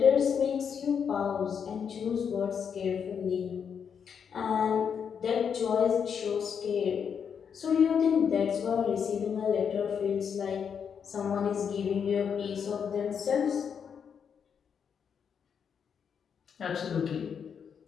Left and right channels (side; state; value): right; quieter; 7.2 dB